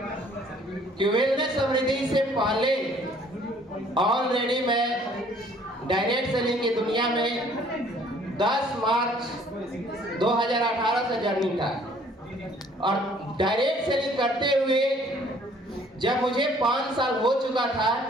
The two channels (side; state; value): both; normal; correlation 0.58